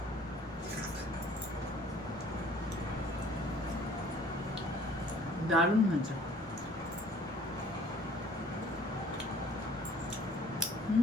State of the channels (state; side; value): normal; both; correlation 0.53